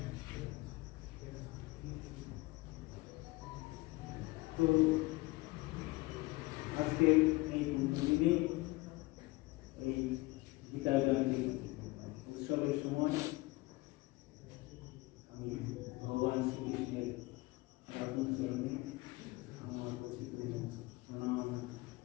তো আজকে এই দিনে এই গীতা জয়ন্তী উৎসবের সময় আমি ভগবান শ্রীকৃষ্ণের চরণে আমার প্রণাম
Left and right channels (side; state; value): right; quieter; 21.8 dB